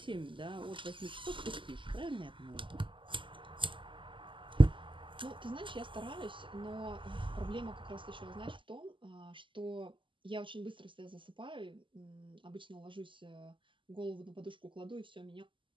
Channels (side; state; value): left; late; 0.25 ms